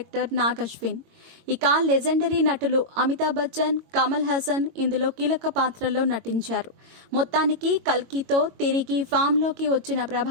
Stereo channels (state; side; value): late; left; 22 ms